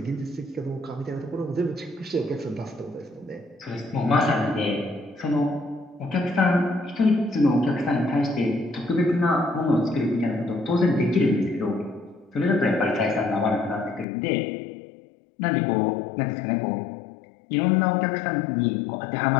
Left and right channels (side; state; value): right; drops out; at 14.1 s